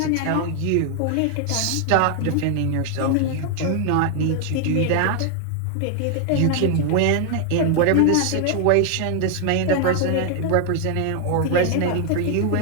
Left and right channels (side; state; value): both; different; correlation 0.00